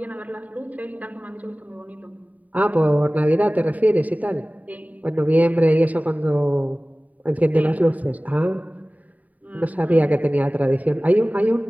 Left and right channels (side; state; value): left; late; 0.073 ms